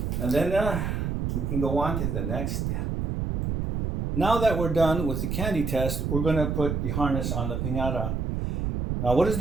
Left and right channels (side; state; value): right; noise; rumble, 1 dB below the sound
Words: And then we can go on to the next step. Now that we're done with the candy test, we're going to put the harness on the piñata. Now, what is